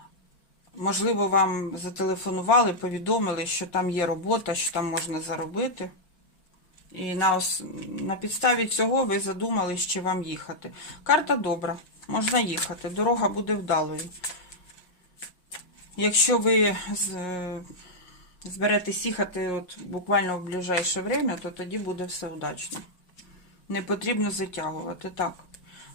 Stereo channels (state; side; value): late; right; 5.5 ms